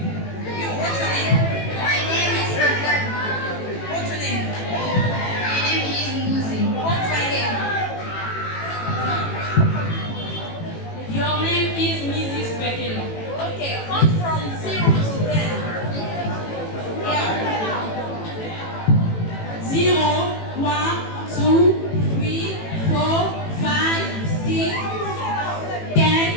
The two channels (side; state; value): right; late; 18 ms